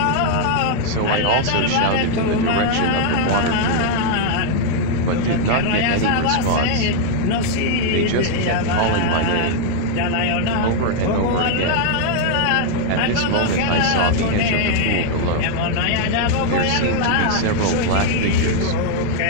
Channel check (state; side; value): different; both; correlation 0.00